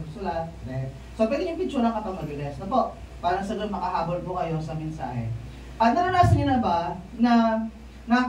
So, pwede yung picture lang kapag mabilis. Na po, parang sagot makahabol po kayo sa mensahe. At naranasan niyo na ba na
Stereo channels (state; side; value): identical; both; correlation 1.00